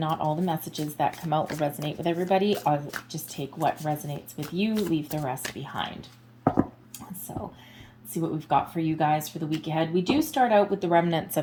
all the messages that come out will resonate with everybody. I'll just take what resonates with you, leave the rest behind. So see what we've got for you guys for the week ahead. We do start out with the remnants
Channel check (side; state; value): both; identical; correlation 1.00